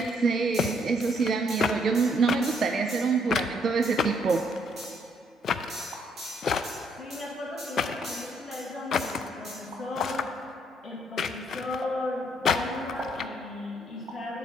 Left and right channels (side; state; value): both; normal; correlation 0.69